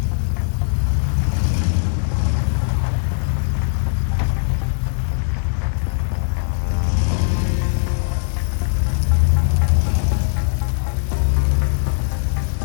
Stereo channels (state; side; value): silent; right; 66 dB below the other